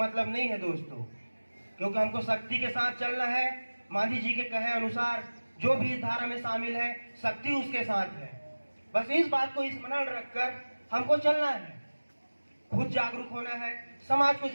नहीं है दोस्तों, क्योंकि हमको शक्ति के साथ चलना है। मांझी जी के कहे अनुसार जो भी इस धारा में शामिल है, शक्ति उसके साथ है। बस इस बात को स्मरण रखकर हमको चलना है, खुद जागरूक होना है, समाज को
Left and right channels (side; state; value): both; inverted; correlation -1.00